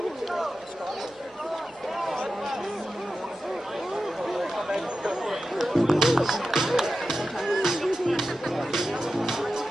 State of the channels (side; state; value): both; normal; correlation 0.92